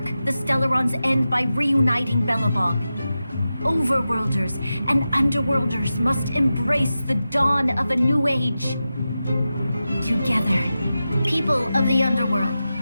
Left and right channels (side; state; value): both; inverted; correlation -0.92